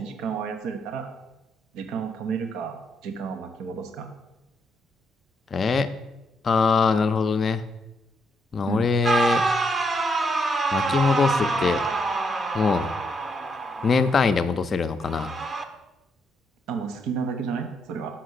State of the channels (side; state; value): both; normal; correlation 0.77